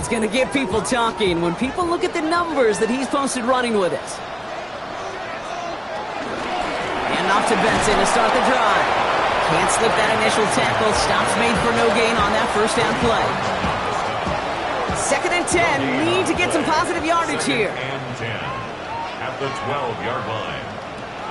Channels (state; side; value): identical; both; correlation 1.00